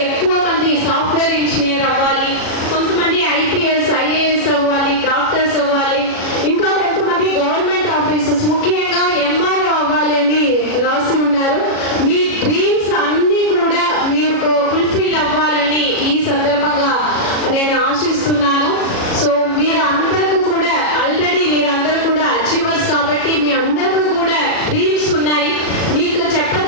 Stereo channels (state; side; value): late; right; 37 ms